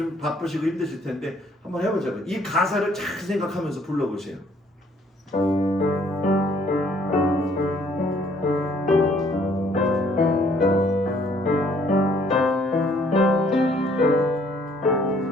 바쁘시고 힘드실 텐데 한번 해보자고요. 이 가사를 잘 생각하면서 불러보세요.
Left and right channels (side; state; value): both; normal; correlation 0.62